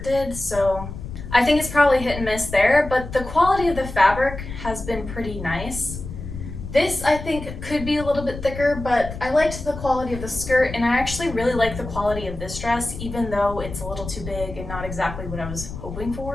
did, so I think it's probably hit and miss there, but the quality of the fabric has been pretty nice. This I think could be a little bit thicker, but I liked the quality of the skirt, and I actually really like the quality of this dress, even though it's a little too big and not exactly what I was hoping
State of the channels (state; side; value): noise; left; rumble, 10 dB below the sound